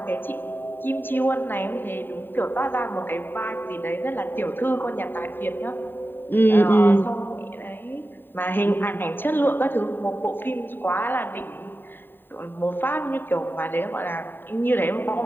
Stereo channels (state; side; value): late; right; 0.096 ms